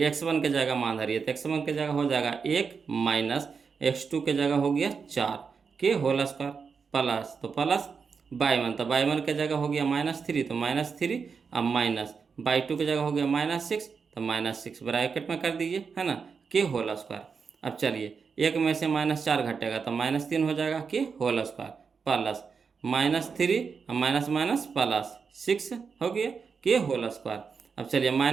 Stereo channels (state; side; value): quieter; left; 5.6 dB